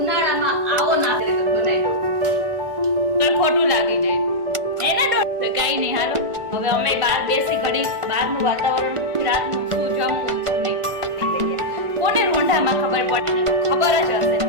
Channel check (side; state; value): left; late; 1.4 ms